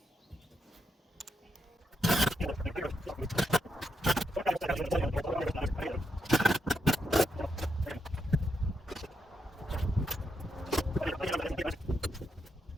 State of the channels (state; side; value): normal; both; correlation 0.82